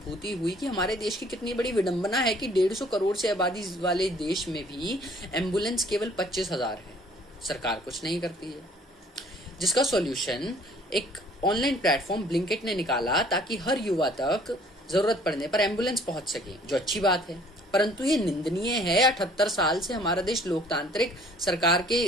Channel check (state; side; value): normal; both; correlation 0.56